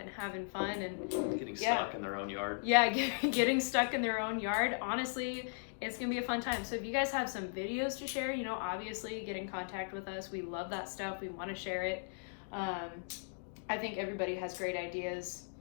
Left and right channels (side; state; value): right; silent; digital silence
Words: having fun and getting stuck in their own yard. Yeah, getting stuck in their own yard. Honestly, it's gonna be a fun time. So if you guys have some videos to share, obviously get in contact with us. We love that stuff. We want to share it. I think everybody has great ideas.